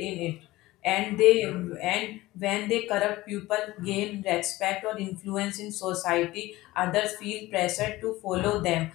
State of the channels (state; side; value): quieter; right; 18.3 dB